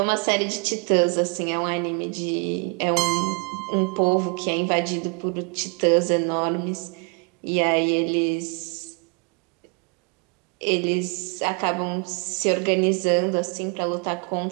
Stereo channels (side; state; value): left; quieter; 35.7 dB